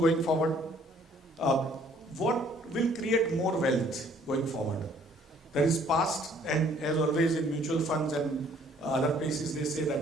forward? What will create more wealth going forward? There is past, and as always in mutual funds and other places they say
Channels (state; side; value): normal; both; correlation 0.60